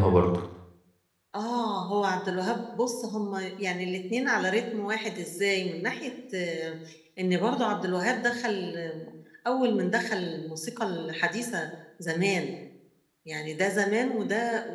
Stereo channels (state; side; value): identical; both; correlation 1.00